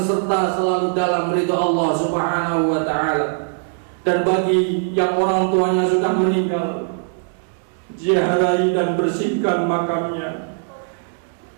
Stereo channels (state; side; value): silent; left; 65 dB below the other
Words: selalu dalam ridha Allah Subhanahu wa ta'ala. Dan bagi yang orang tuanya sudah meninggal, ziarahi dan bersihkan makamnya.